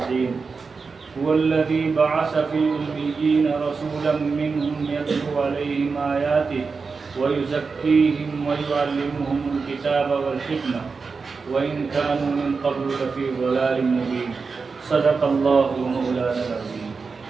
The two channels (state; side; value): quieter; left; 4.8 dB